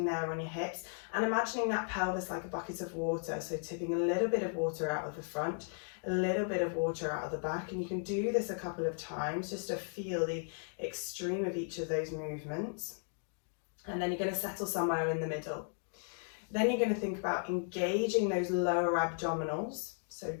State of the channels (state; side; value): silent; right; 54 dB below the other